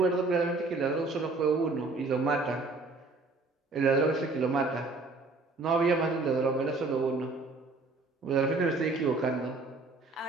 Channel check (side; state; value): left; quieter; 3.5 dB